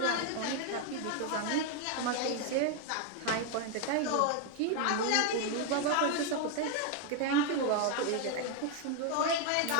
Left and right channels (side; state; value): both; different; correlation 0.01